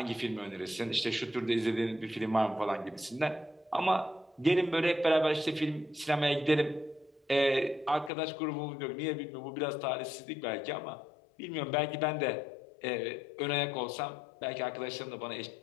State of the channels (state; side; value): drops out; right; at 8.1 s